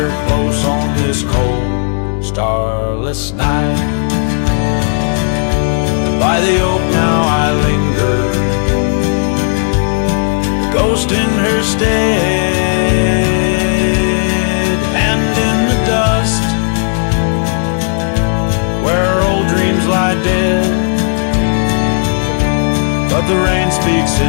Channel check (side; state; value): right; silent; digital silence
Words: close on this cold, starless night? By the oak now I linger, ghost in her stead, and in the dust where old dreams lie dead. But the rain speaks